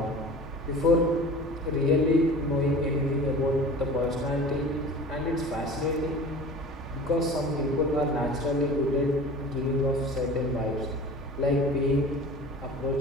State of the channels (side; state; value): both; normal; correlation 0.40